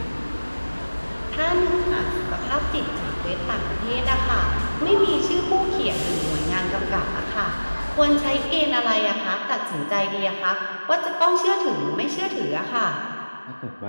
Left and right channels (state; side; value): inverted; both; correlation -1.00